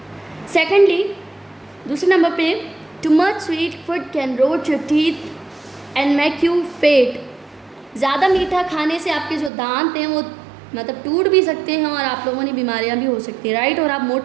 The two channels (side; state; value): left; drops out; at 9.5 s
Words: सेकेंडली, दूसरे नंबर पे, too much sweet food can rot your teeth and make you fat, ज़्यादा मीठा खाने से आपके जो दांत हैं वो मतलब टूट भी सकते हैं और आप लोगों ने बीमारियां भी हो सकती हैं, राइट, और आप